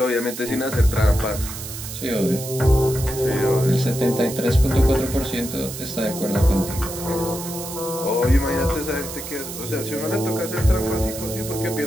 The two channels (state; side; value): noise; right; hiss, 9 dB below the sound